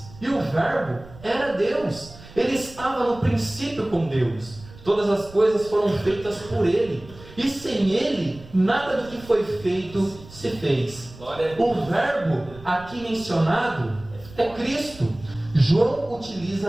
e o Verbo era Deus. Ele estava no princípio com Deus. Todas as coisas foram feitas por Ele, e sem Ele nada do que foi feito se fez. O Verbo aqui mencionado é Cristo. João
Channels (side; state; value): right; noise; rumble, 19 dB below the sound